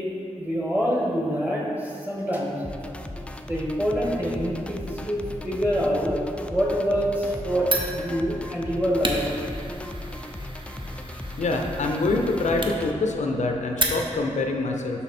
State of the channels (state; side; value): normal; both; correlation 0.72